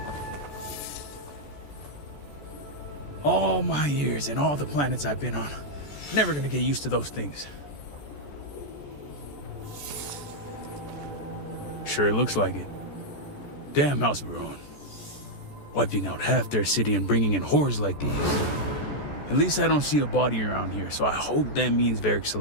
All my years and all the planets I've been on. Never gonna get used to those things. Sure looks like it. Damn House Veron. Wiping out half their city and bringing in horrors like these. At least I don't see a body around here, so I hope that means Varric's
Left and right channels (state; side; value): late; right; 14 ms